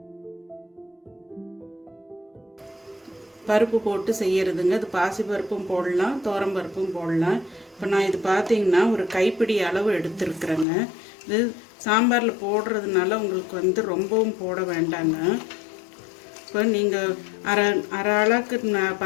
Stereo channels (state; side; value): drops out; right; at 10.7 s